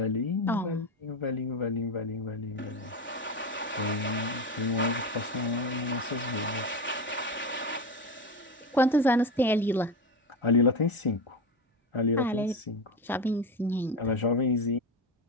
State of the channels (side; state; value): both; normal; correlation 0.18